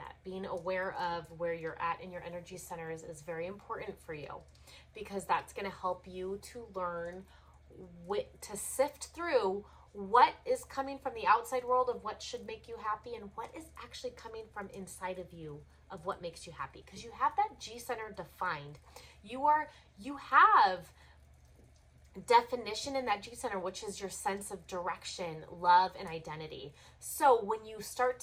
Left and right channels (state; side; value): identical; both; correlation 1.00